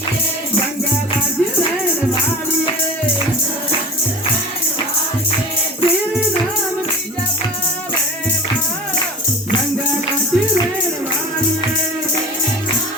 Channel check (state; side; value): normal; both; correlation 0.38